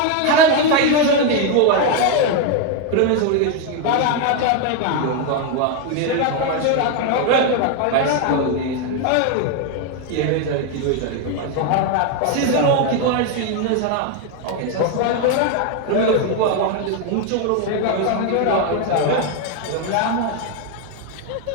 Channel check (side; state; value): both; different; correlation 0.01